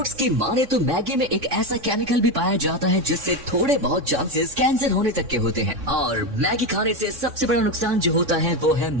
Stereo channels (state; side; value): late; left; 3.6 ms